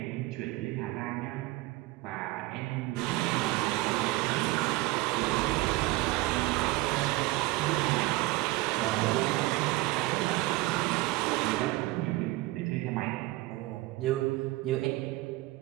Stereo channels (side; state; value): left; quieter; 19.8 dB